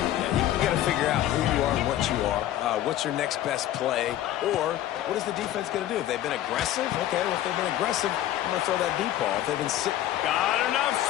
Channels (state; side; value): quieter; right; 13.0 dB